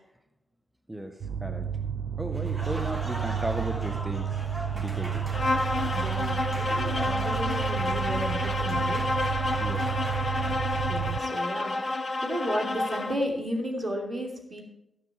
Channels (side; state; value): both; normal; correlation 0.73